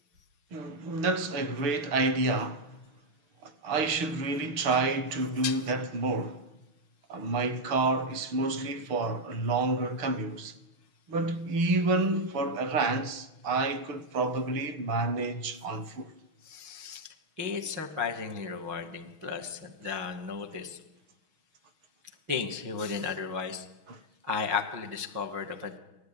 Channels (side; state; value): left; late; 6.2 ms